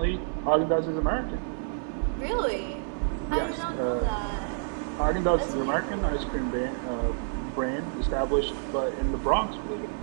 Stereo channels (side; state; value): left; silent; 59 dB below the other